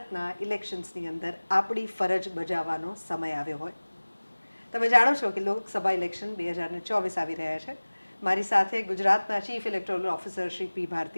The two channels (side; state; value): both; inverted; correlation -1.00